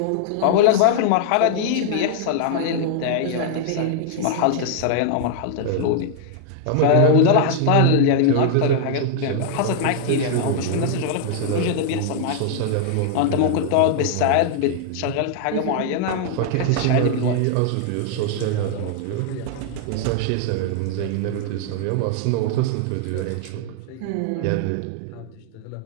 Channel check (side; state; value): both; different; correlation -0.01